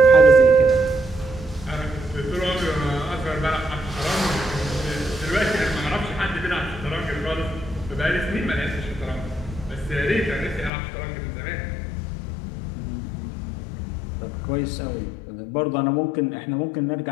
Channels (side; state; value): right; drops out; at 10.7 s